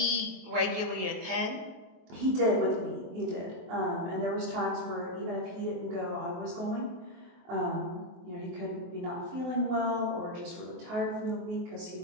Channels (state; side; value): late; left; 23 ms